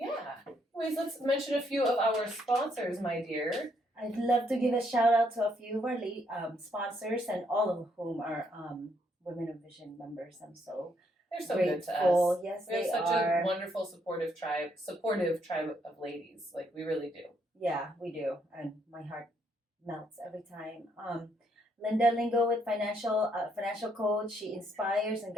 Anyways, let's mention a few of our sponsors, my dear. I'd love to give a shout out to a few of our sponsors, and all of whom are Women of Vision members. I'm so They're so grateful. good to us. Yes, we have they such are. A wonderful, supportive tribe of ladies. Like, we really do. Yeah, we do, and my heart melts every time. Linda Lingo with financial coach. She inspires and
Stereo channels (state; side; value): normal; both; correlation 0.73